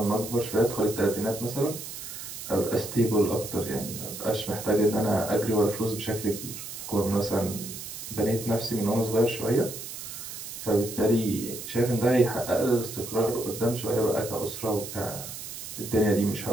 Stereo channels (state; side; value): noise; right; hiss, 9 dB below the sound